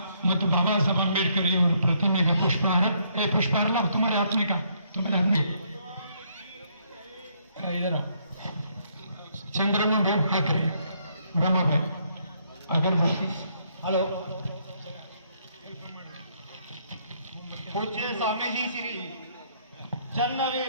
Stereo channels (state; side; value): inverted; both; correlation -0.70